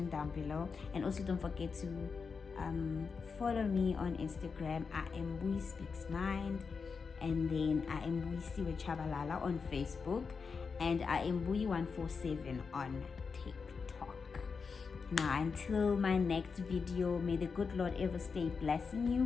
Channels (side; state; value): right; quieter; 5.3 dB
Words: down below. And also don't forget to follow me on Instagram. I am Buyi Speaks Mind, and then I am Buyi Siwe Chabalala on Facebook, and I am Buyi147 on TikTok. Now, until my next video, may the good Lord ever stay blessing